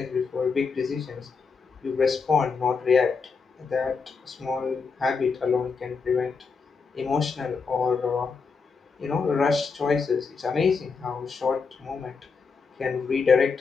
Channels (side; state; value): right; quieter; 5.0 dB